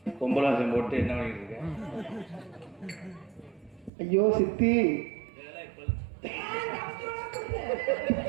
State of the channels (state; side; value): drops out; left; at 3.9 s